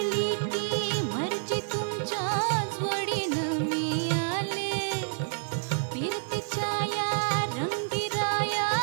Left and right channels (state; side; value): silent; left; 59 dB below the other